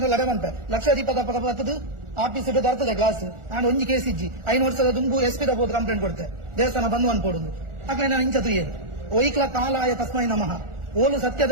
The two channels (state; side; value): late; left; 1.4 ms